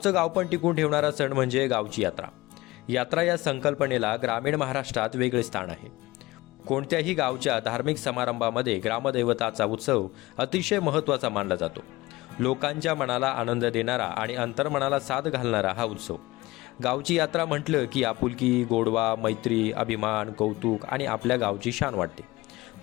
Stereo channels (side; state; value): right; quieter; 20.0 dB